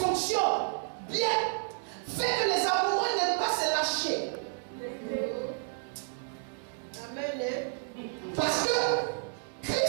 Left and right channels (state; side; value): silent; left; digital silence